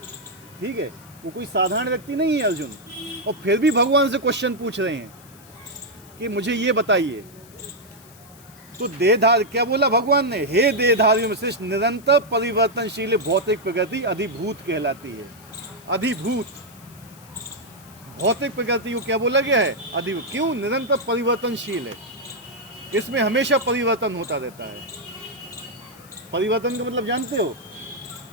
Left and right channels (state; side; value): noise; left; hiss, 23 dB below the sound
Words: ठीक है, वो कोई साधारण व्यक्ति नहीं है अर्जुन, और फिर भी भगवान से क्वेश्चन पूछ रहे हैं कि मुझे ये बताइए। तो देहधारी, क्या बोला भगवान ने? हे देहधारियों में श्रेष्ठ, निरंतर परिवर्तनशील भौतिक प्रकृति अधिभूत कहलाती है। अधिभूत भौतिक प्रकृति को क्या बोला गया है? अधिभूत। क्यों? निरंतर परिवर्तनशील है, इसमें हमेशा परिवर्तन होता रहता है। परिवर्तन का मतलब जानते हो